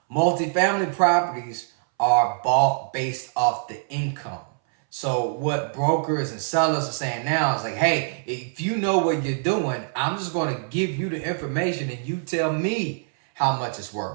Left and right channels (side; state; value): left; silent; 62 dB below the other